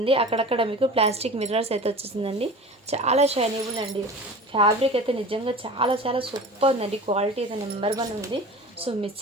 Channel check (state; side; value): normal; both; correlation 0.37